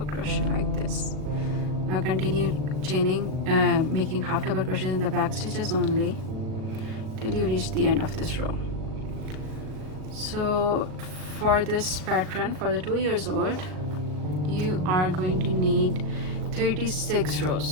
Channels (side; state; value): left; late; 38 ms